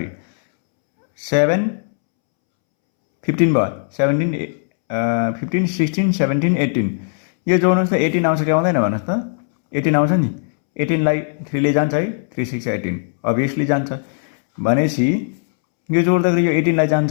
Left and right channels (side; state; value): right; silent; 67 dB below the other